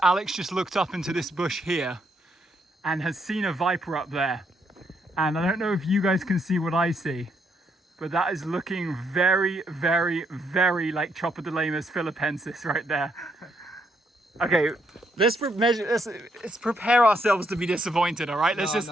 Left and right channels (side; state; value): both; normal; correlation 0.75